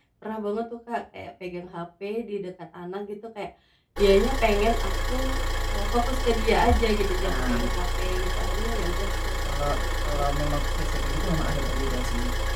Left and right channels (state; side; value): identical; both; correlation 1.00